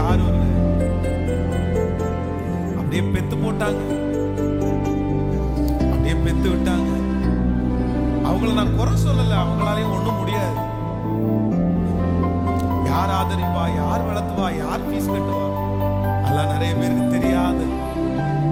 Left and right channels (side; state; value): both; identical; correlation 1.00